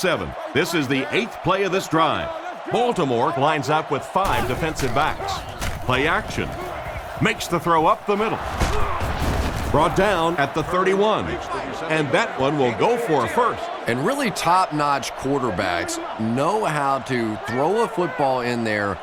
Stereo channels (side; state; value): both; identical; correlation 1.00